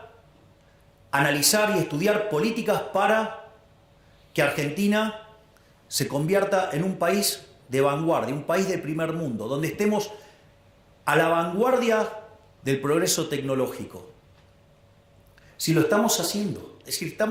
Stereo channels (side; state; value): both; identical; correlation 1.00